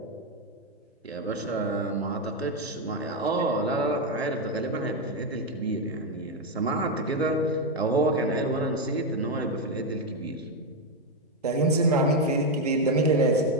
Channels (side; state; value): both; normal; correlation 0.05